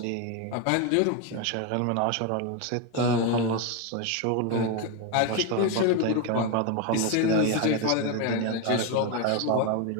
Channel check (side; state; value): both; different; correlation 0.02